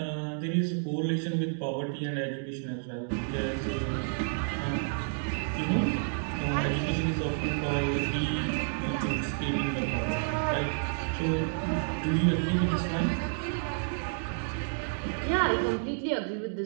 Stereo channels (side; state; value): left; silent; 58 dB below the other